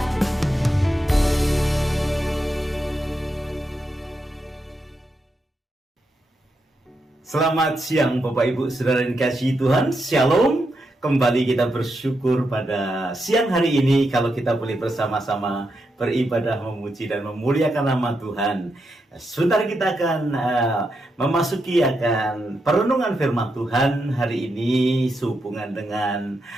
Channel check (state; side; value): normal; both; correlation 0.84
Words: Selamat siang Bapak Ibu Saudara yang dikasihi Tuhan. Shalom. Kembali kita bersyukur pada siang hari ini kalau kita boleh bersama-sama beribadah, memuji dan memuliakan nama Tuhan. Sebentar kita akan memasuki akan perenungan firman Tuhan hari ini sehubungan dengan